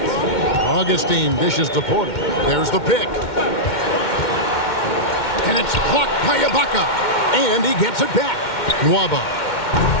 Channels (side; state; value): right; late; 2.1 ms